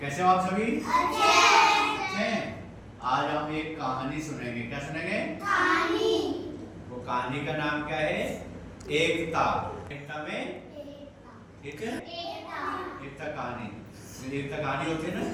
कैसे हो आप सभी? अच्छे। आज हम एक कहानी सुनेंगे। क्या सुनेंगे? कहानी। वो कहानी का नाम क्या है? एकता। एकता में ठीक है, एकता कहानी। एकता कहानी होती है ना,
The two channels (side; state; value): both; identical; correlation 1.00